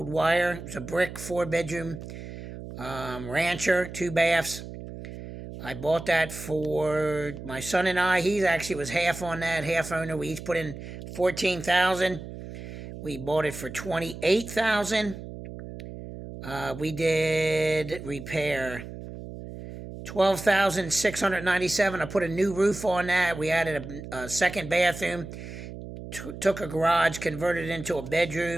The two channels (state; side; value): noise; right; hum, 11 dB below the sound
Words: Wire. It's a brick 4-bedroom rancher, 2 baths. I bought that for my son and I. He actually was half on that, half owner. We each put in 14,000. We bought it for 28,000. We did repair 12,697. I put a new roof on that. We added a second bathroom. Took a garage, converted it into a